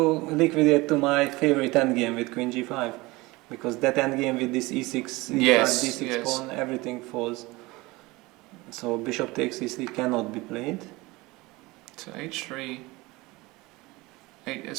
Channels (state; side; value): quieter; left; 22.0 dB